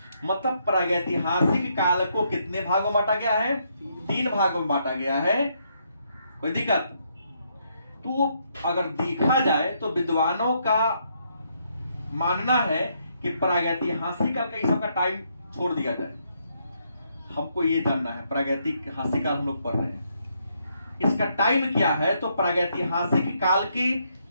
मतलब प्रागैतिहासिक काल को कितने भागों में बांटा गया है, 3 भागों में बांटा गया है। कोई दिक्कत? तो अगर देखा जाए तो विद्वानों का मानना है कि प्रागैतिहासिक काल का इस सबका टाइम छोड़ दिया जाए। हमको ये जानना है, प्रागैतिहासिक काल हम लोग पढ़ रहे हैं, इसका टाइम क्या है। तो प्रागैतिहासिक काल के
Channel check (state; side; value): inverted; both; correlation -0.75